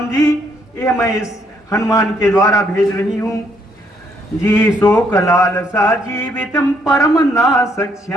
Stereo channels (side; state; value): both; normal; correlation 0.70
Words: जी, यह मैं इस हनुमान के द्वारा भेज रही हूं। जी शोक लालसा जीवितम परम ना